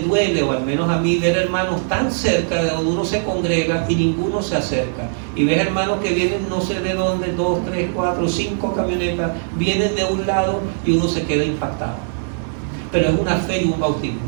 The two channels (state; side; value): silent; left; 66 dB below the other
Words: duele, o al menos a mí, ver hermanos tan cerca de donde uno se congrega y ninguno se acerca. Y ver hermanos que vienen no sé de dónde, 2, 3, 4, 5 camionetas, vienen de un lado y uno se queda impactado. Pero es una fe y un bautismo.